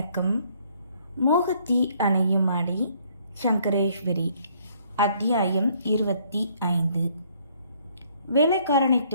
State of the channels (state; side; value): inverted; both; correlation -0.64